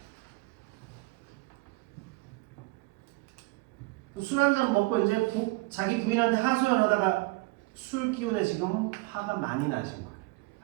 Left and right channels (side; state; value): left; quieter; 23.0 dB